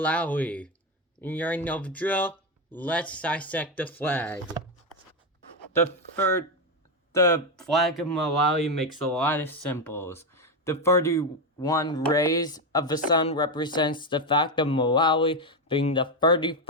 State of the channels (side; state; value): both; normal; correlation 0.09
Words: And you already know the drill. Let's dissect the flag. The flag of Malawi makes a lot of symbols. The 31 rays of the sun represents the fact of Malawi being the